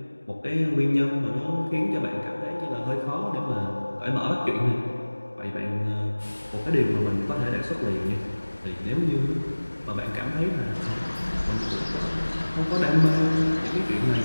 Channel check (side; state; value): both; inverted; correlation -1.00